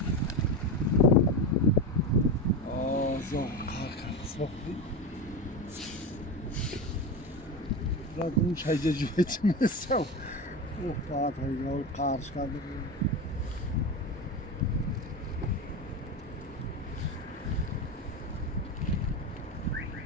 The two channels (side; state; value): both; normal; correlation 0.21